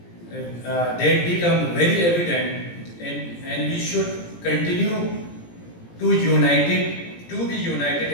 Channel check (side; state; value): right; late; 17 ms